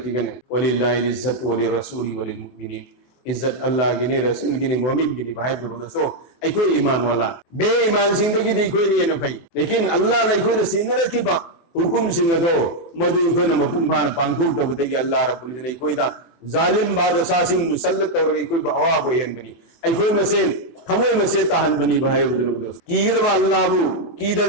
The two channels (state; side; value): late; right; 24 ms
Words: गने वलिल्लाहि इज्जत वलि रसूली वलिल मुमिनीन इज्जत अल्लाह की ने रसूल की ने मोमिन की ने भाई बुरो दोस्तों आई कोई ईमान वाला बे ईमान जिंदगी दी कोई नहीं है भाई लेकिन अल्लाह ने कोई सिंह रखी बा हुकुम सिंह दो मधु कोई न मकुम खान पांकुल तो बतेगी अल्लाह रब्बुल इज्जत ने कोई दा जालिम बादशाह सिंह मुसल्लत और कोई बवा बोयन बनी आई कोई मसे थमो मसे तहन बनी भाई बुजुर्ग दोस्त कीद अल्लाह बु